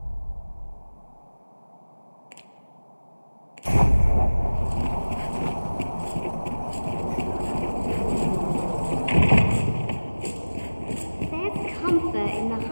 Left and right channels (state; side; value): inverted; both; correlation -1.00